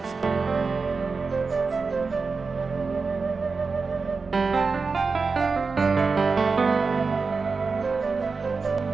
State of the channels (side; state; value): left; quieter; 4.5 dB